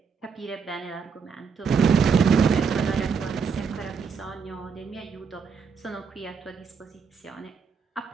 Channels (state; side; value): quieter; left; 5.9 dB